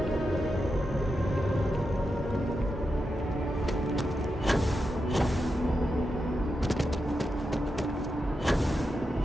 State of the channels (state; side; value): normal; both; correlation 0.88